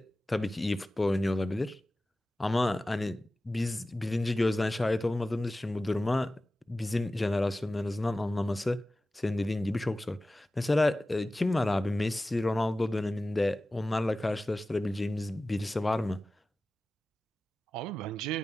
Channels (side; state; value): both; normal; correlation 0.96